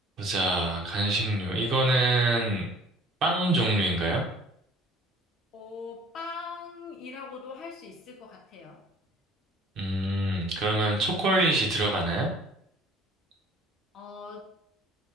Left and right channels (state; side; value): normal; both; correlation 0.51